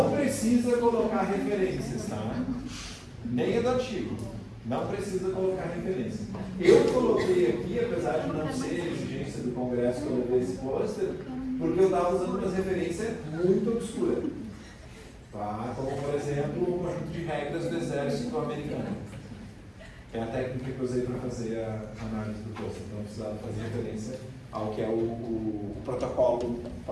precisa colocar referências, tá? Nem é do artigo. Não precisa colocar referência. Eu coloquei aqui, apesar de não ser exigência do Congresso que eu levei esse pôster, porque eu estava usando umas referências muito obscuras. Tá? Como, por exemplo, o conjunto de regras do Exército Americano. É a técnica que eu usei para fazer a análise do pôster. Então, eu precisava fazer referência ao que é o protocolo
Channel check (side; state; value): both; identical; correlation 1.00